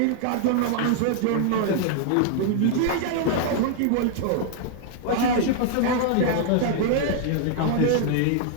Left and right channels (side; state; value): both; different; correlation 0.00